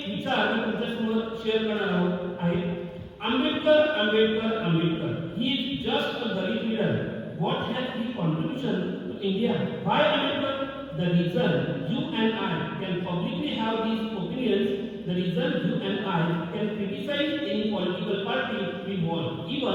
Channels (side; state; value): both; identical; correlation 1.00